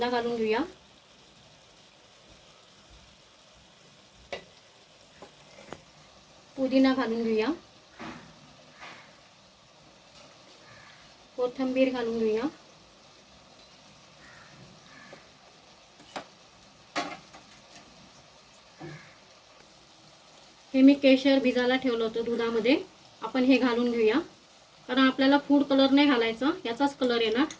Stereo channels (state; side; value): identical; both; correlation 1.00